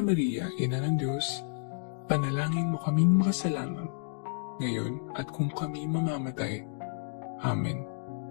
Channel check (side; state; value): right; silent; digital silence